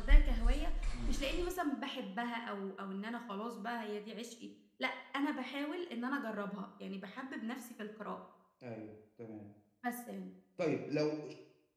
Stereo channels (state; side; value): identical; both; correlation 1.00